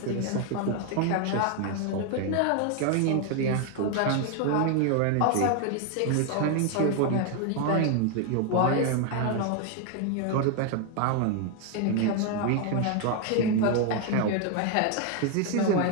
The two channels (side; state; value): both; different; correlation 0.01